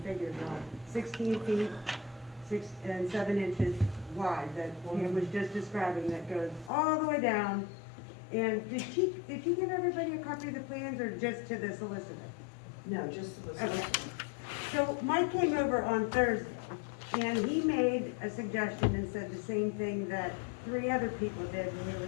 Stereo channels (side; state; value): right; drops out; at 6.7 s